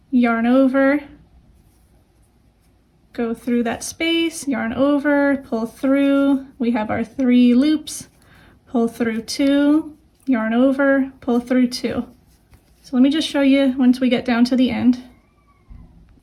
Yarn over, go through that space, yarn over, pull through. We have our 3 loops, pull through 2, yarn over, pull through 2. So let me just show you once we get down to the end.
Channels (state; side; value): identical; both; correlation 1.00